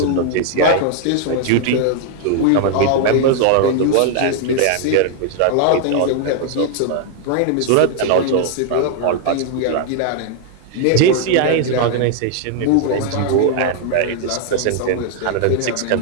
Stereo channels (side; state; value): both; different; correlation 0.00